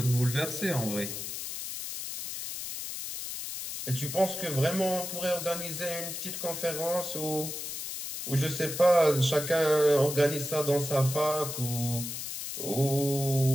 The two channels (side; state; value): left; noise; hiss, 6 dB below the sound